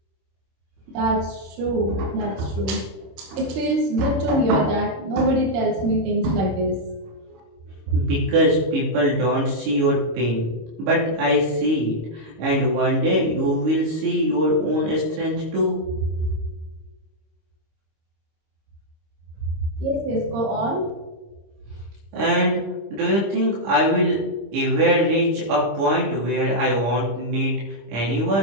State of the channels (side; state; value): left; late; 25 ms